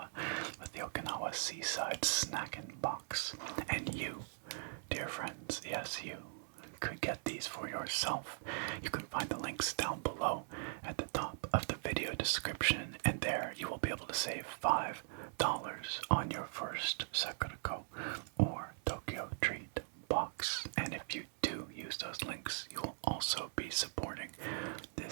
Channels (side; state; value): left; silent; 51 dB below the other